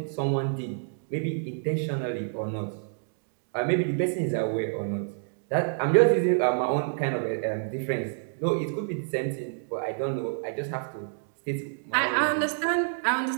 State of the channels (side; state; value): left; silent; digital silence